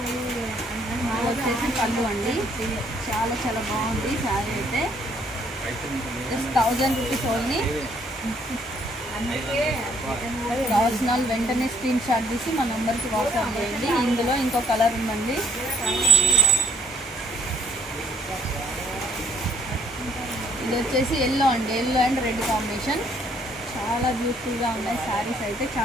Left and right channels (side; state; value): both; normal; correlation 0.63